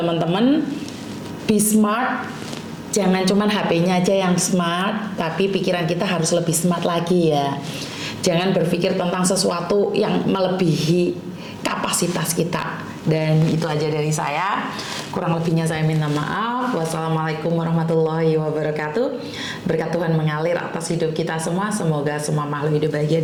be smart. Jangan cuman HP-nya aja yang smart, tapi pikiran kita harus lebih smart lagi ya. Jangan berpikir tentang sesuatu yang melebihi kapasitas kita. Dan itu aja dari saya. Kurang lebihnya saya minta maaf. Wassalamualaikum warahmatullahi wabarakatuh. Berkat Tuhan mengalir atas hidup kita semua. Semoga semua makhluk hidup bahagia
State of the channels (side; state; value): both; identical; correlation 1.00